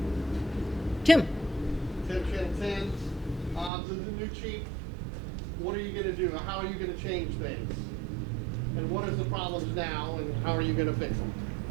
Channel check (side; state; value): left; drops out; at 3.7 s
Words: Tim. Tim Chantan, to the new chief, what are you going to do? How are you going to change things? And what is the problems now, and how are you going to fix them?